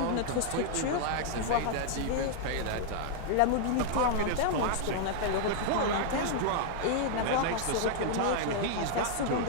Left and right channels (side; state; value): both; different; correlation -0.01